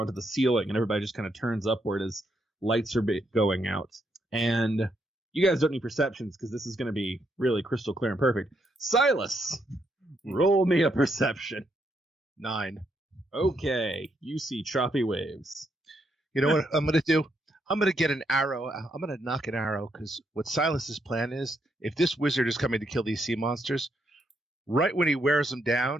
the ceiling, and everybody just kind of turns upward as lights are going out. And you guys don't need perceptions, because this is going to be really crystal clear and perfect. Silas, roll me a perception. 9. Okay, you see choppy waves. You know what I'm going to do? I'm going to get an arrow. I'm going to knock an arrow, because what Silas's plan is, if this wizard is coming to kill these sea monsters, right when he wears them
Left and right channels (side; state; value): both; normal; correlation 0.77